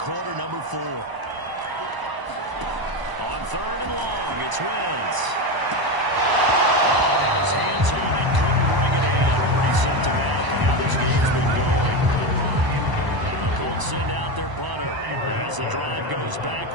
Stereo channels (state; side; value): late; left; 1.0 ms